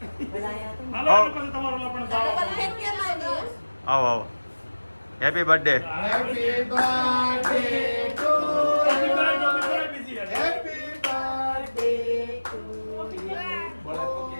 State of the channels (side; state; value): both; inverted; correlation -1.00